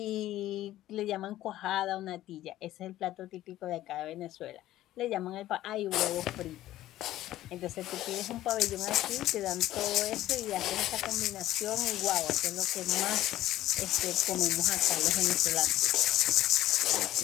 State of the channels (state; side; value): quieter; right; 14.4 dB